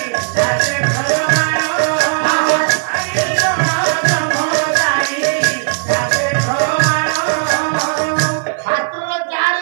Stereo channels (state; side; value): silent; left; 56 dB below the other